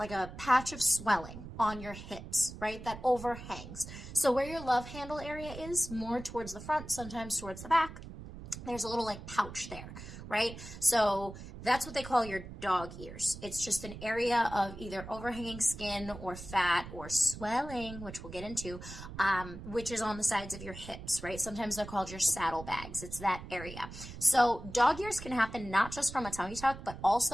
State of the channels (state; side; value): noise; right; rumble, 12 dB below the sound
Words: patch of swelling on your hips, right? That overhangs. So where your love handle area is, more towards the front, sometimes towards the back, there's a little like pouch there, right? So that's what they call your dog ears. It's just an area of either overhanging skin or fat or swelling, which we'll get into, which is on the sides of your hips, right? Sometimes they're called your saddlebags. It's that area. So dog ears can happen not just from a tummy tuck, but